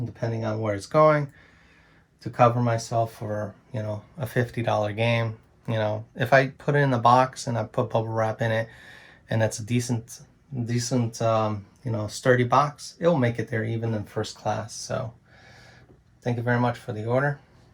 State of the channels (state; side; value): identical; both; correlation 1.00